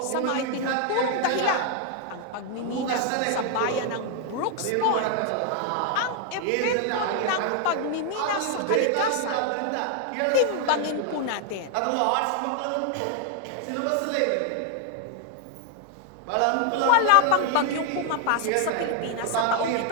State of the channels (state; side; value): different; both; correlation 0.00